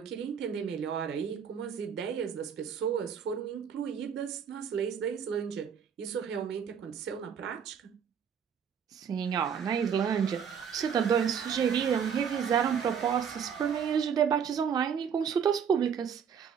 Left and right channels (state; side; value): quieter; left; 7.5 dB